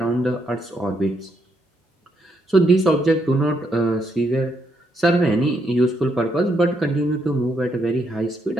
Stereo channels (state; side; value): normal; both; correlation 0.77